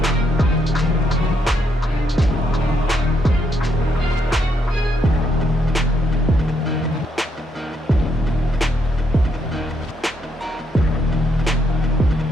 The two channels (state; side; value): normal; both; correlation 0.75